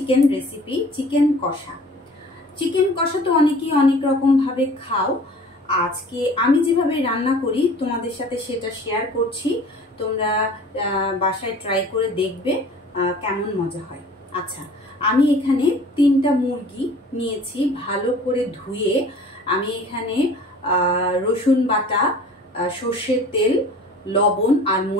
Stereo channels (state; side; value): normal; both; correlation 0.46